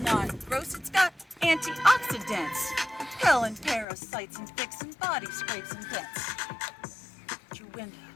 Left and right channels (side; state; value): right; drops out; at 3.9 s